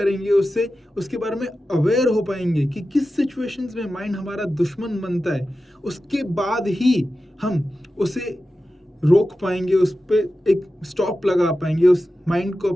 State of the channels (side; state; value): both; normal; correlation 0.93